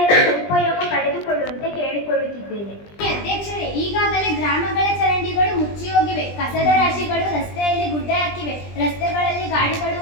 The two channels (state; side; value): late; right; 20 ms